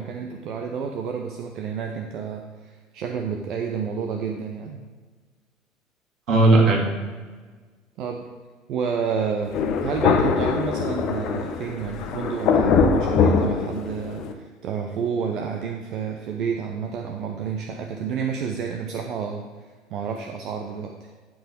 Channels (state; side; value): normal; both; correlation 0.43